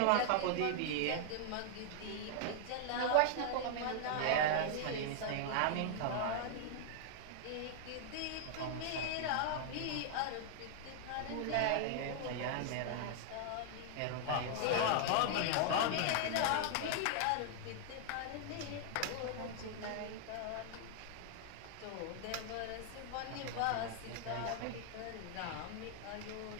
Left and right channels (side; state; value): both; different; correlation 0.00